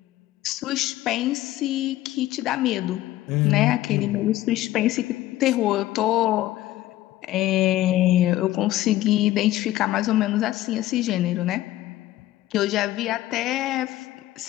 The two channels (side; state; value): right; quieter; 15.3 dB